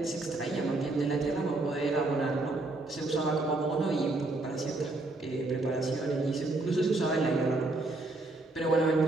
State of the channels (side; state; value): left; quieter; 3.0 dB